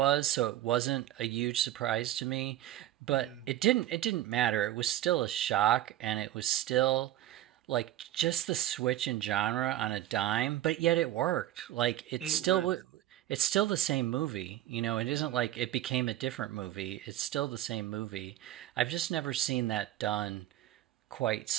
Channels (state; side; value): quieter; left; 13.5 dB